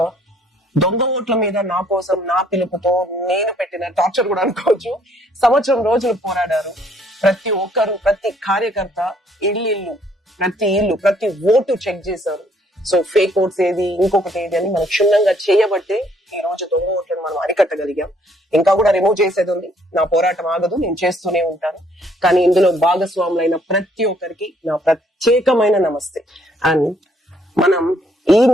దొంగ ఓట్ల మీద నా కోసం నా పిలుపుతో నేను పెట్టిన టార్చర్ కూడా అనుకోవచ్చు. సంవత్సరం రోజులు పోరాడారు. ప్రతి ఒక్కరు, ప్రతి కార్యకర్త ఇల్లు, ప్రతి ఓటు చెక్ చేశారు. ఫేక్ ఓట్స్ ఏది, ఇంకొకటి ఏది అని మనం క్షుణ్ణంగా చేయబట్టే ఈ రోజు దొంగ ఓట్లను మనం అరికట్టగలిగాం. ఇంకా కూడా రిమూవ్ చేసేది ఉంది. నా పోరాటం ఆగదు, నేను చేస్తూనే ఉంటాను. కానీ ఇందులో భాగస్వాములైన ప్రతి ఒక్కరికి నా ప్రత్యేకమైన నమస్తే. అండ్ మనం ఈ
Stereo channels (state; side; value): normal; both; correlation 0.65